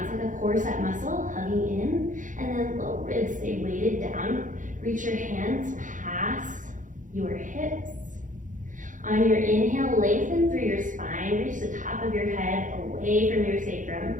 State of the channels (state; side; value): late; left; 0.37 ms